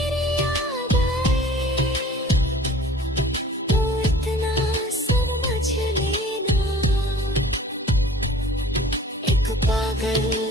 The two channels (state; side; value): normal; both; correlation 0.47